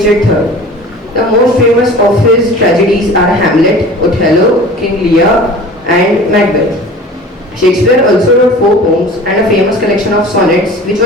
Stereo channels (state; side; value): normal; both; correlation 0.41